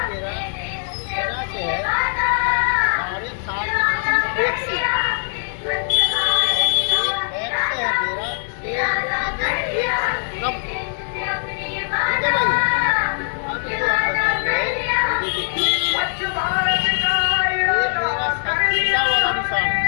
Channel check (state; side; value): silent; right; 65 dB below the other